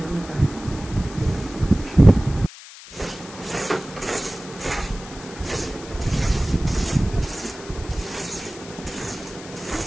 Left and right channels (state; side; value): noise; left; hiss, 16 dB below the sound